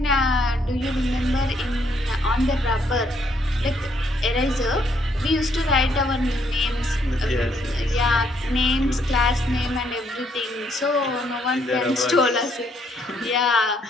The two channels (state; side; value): normal; both; correlation 0.71